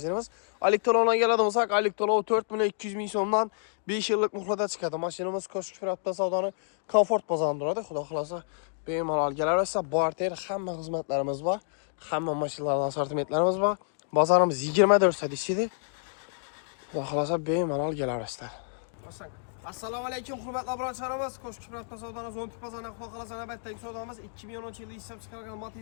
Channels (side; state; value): right; silent; digital silence